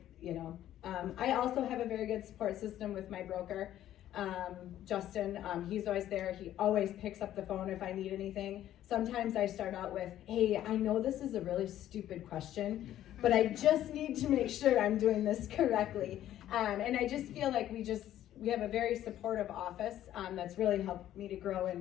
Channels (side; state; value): right; quieter; 12.3 dB